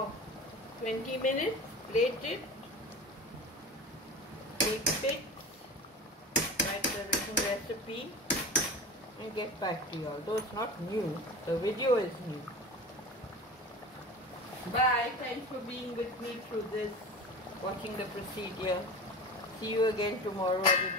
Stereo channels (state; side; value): normal; both; correlation 0.32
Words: 20 minutes. Plate it. Take pics. Write the written recipe. And get back to you. Although it's not new, the video is new. Bye. Thanks for being with me through this, watching the procedure. See you again tomorrow or